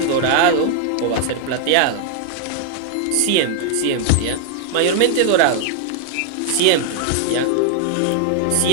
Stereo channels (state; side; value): different; both; correlation -0.01